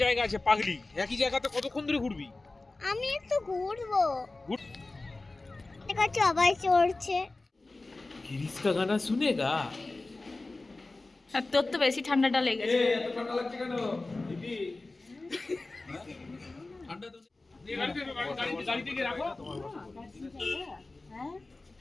জায়গা আছে পাগলি, একই জায়গাতে কতক্ষণ ধরে ঘুরবি? আমি একটু ঘুরবো। ঘুর। এটা সবাই চড়ছে। गिरीश का गाना सुनेगा? আর তোর তো বেশি ঠান্ডাটা লেগেছে। এত ঠান্ডা লাগছে কেন দিদি? ঠান্ডা তো ये गाड़ी থেকে রাখো। হ্যাঁ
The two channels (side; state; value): right; quieter; 3.2 dB